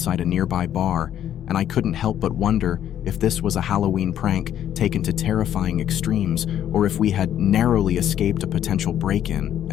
a nearby bar, and I couldn't help but wonder if this was a Halloween prank taken to terrifying extremes, or if we had narrowly escaped a potential break-in,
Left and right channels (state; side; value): quieter; right; 10.6 dB